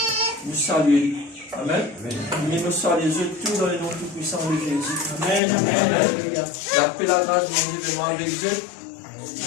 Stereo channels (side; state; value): right; drops out; at 5.4 s